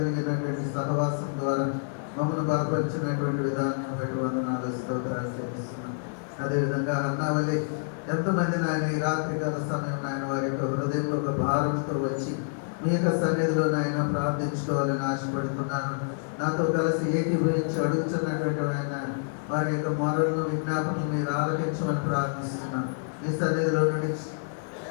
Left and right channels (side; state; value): right; silent; digital silence